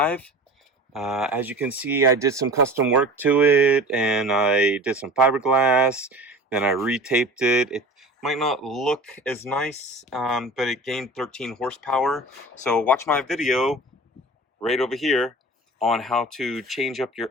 As you can see, I did some custom work to it, and I did some fiberglass, then I retaped it. It might not look as nice, but it gained 13 horsepower. So watch my video right over here on how to change up your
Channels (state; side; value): normal; both; correlation 0.38